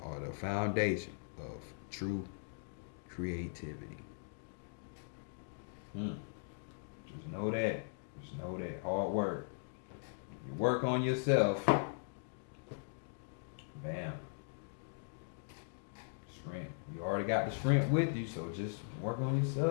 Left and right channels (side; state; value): right; silent; digital silence